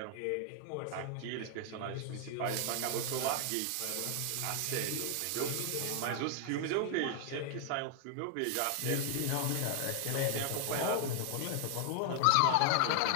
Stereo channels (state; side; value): different; both; correlation 0.00